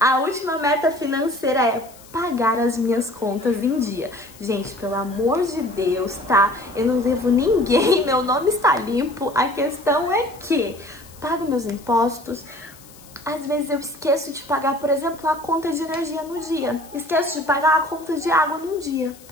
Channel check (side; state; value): left; noise; hiss, 23 dB below the sound